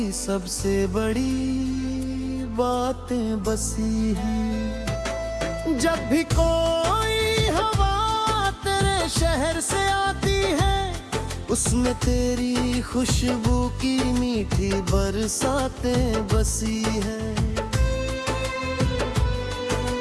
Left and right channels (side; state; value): both; identical; correlation 1.00